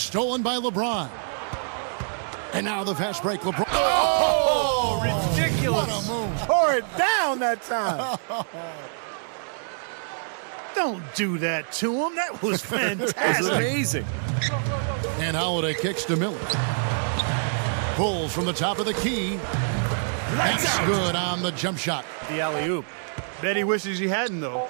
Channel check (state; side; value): silent; left; digital silence